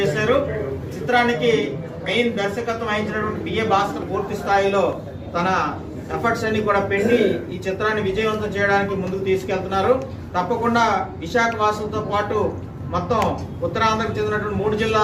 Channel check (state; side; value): identical; both; correlation 1.00